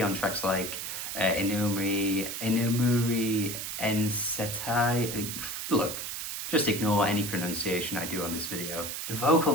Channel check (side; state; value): right; noise; hiss, 5 dB below the sound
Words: on tracks like Inumuri Ensetai. Look, just ignore any pronunciation I do on this video. The